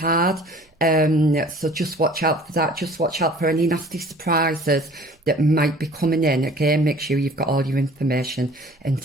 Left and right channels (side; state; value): both; normal; correlation 0.49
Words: So just watch out for that. Just watch out for any nasty surprises that might be coming in. Again, make sure you've got all your information and